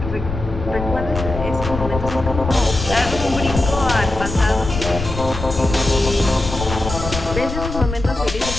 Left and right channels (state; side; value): noise; left; rumble, 7 dB below the sound